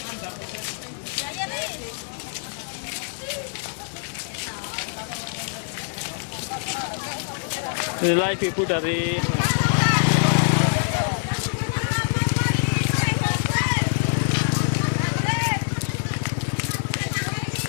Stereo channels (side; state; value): right; silent; 62 dB below the other